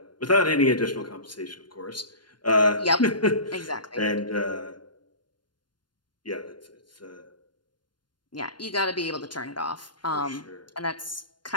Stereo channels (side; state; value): right; late; 0.71 ms